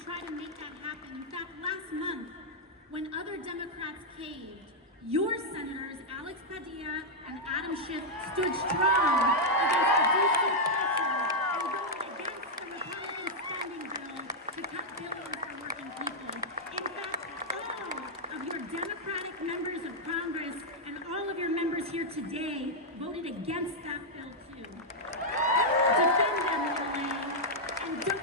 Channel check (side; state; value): both; normal; correlation -0.04